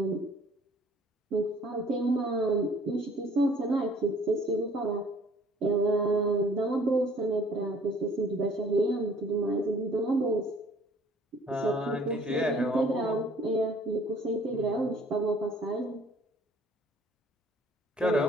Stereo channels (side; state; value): both; normal; correlation 0.55